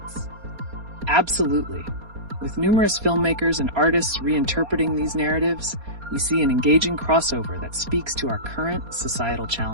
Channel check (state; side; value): late; left; 4.3 ms